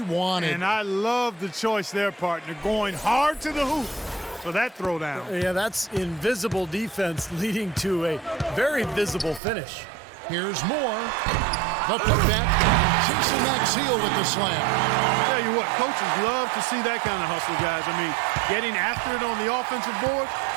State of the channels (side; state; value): left; drops out; at 9.4 s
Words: wanted. And I love the choice there, partner, going hard to the hoop for that throwdown. Yeah, that's invisible defense leading to a very visible finish. Here's Moore. The putback. Jason Maxiel with the slam. I tell you what, coaches love to see that kind of hustle, guys. I mean, getting after it on the offensive board,